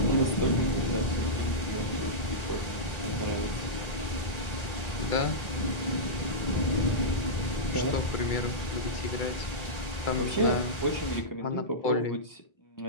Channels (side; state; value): right; late; 1.3 ms